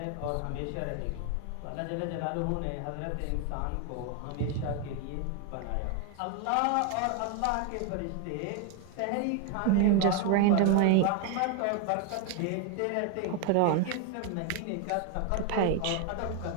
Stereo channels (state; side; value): different; both; correlation 0.01